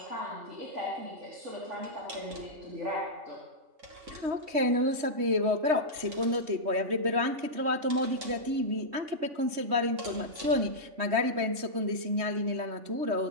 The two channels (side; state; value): left; late; 3.2 ms